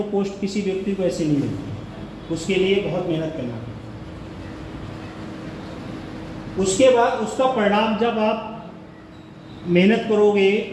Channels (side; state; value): both; identical; correlation 1.00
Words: पोस्ट किसी व्यक्ति को ऐसे नहीं मिलती, उसके लिए बहुत मेहनत करना पड़ता है। उसके बाद उसका परिणाम जब आप मेहनत करोगे,